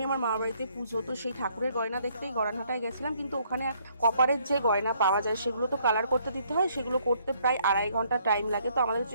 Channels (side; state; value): both; inverted; correlation -0.67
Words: আমার মামার বাড়িতে পুজো, তো সেই ঠাকুরের গয়না দেখতেই গড়ানহাটায় গেছিলাম। কিন্তু ওখানে কপারের যে গয়না পাওয়া যায় সেগুলো তো কালার করতে দিতে হয়, সেগুলো করতে প্রায় 2.5 ঘন্টা টাইম লাগে। তো আমাদের